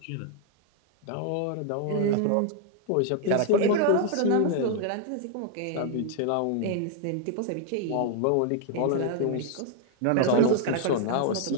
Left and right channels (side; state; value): both; different; correlation 0.00